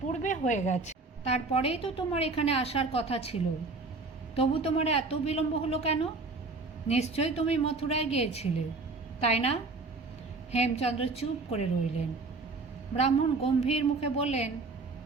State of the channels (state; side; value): quieter; left; 3.7 dB